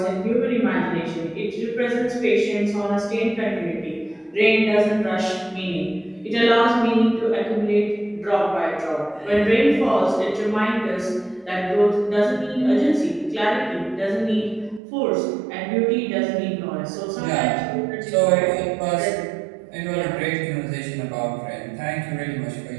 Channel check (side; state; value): left; drops out; at 14.8 s